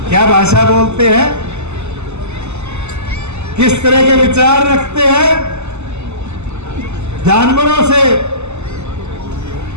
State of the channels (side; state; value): left; late; 0.82 ms